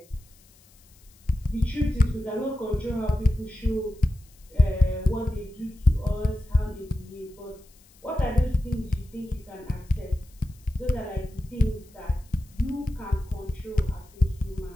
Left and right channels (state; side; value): noise; left; hiss, 28 dB below the sound